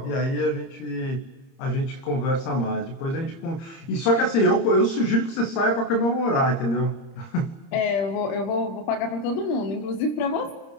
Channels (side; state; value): right; late; 30 ms